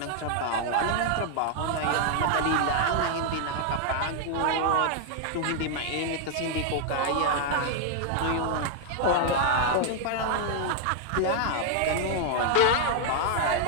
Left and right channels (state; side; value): different; both; correlation 0.00